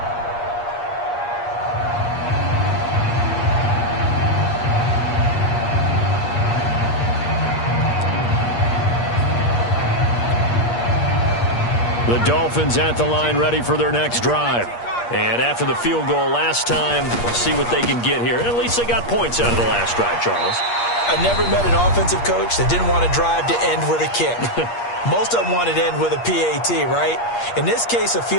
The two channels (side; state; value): right; late; 8.5 ms